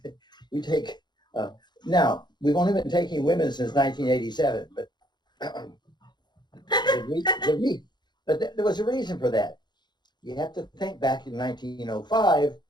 We take. Now we've only been taking women since 1987, but there was a reason for that. You have to think back in 1905,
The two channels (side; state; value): right; late; 0.21 ms